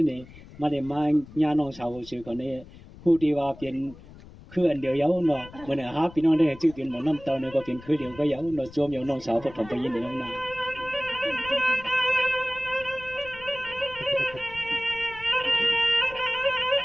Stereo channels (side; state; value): left; noise; rumble, 19 dB below the sound